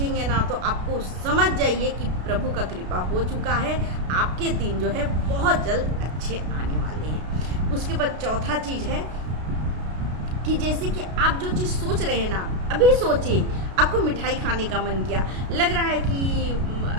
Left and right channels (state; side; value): late; left; 33 ms